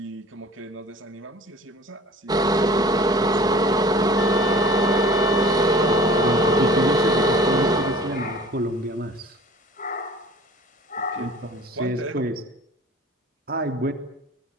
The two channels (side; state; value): both; normal; correlation 0.46